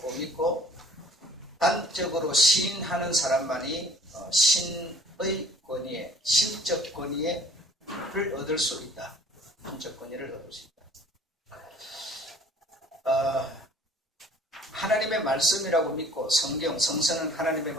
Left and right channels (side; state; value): both; normal; correlation 0.53